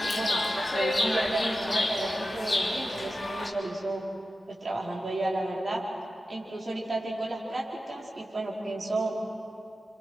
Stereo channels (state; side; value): normal; both; correlation 0.93